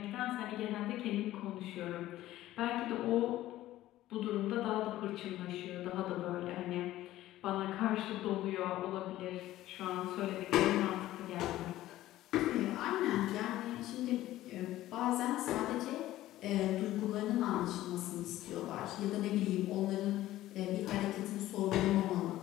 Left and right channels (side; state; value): right; quieter; 15.0 dB